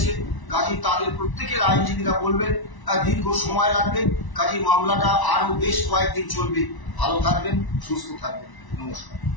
কাজী তাদের প্রত্যেকের আইনজীবীরা বলবেন দীর্ঘ সময় লাগবে, কাজী মামলাটা আরো বেশ কয়েকদিন চলবে। ভালো থাকবেন, সুস্থ থাকবেন, নমস্কার।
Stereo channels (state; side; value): late; right; 1.0 ms